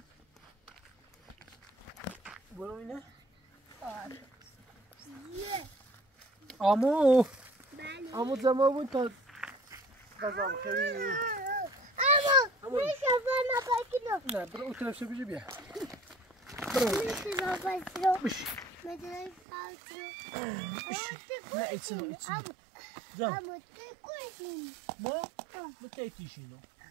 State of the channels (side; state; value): left; drops out; at 19.4 s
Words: برو اینه on. آمو آمو زمان بود تا غذا بخیری اما میشه بنا بکنم نه برو اون طرف شو بیا میشه بنا بش مدرای نه ایتسنو جان اما تکوشیم ما بکیتیشینو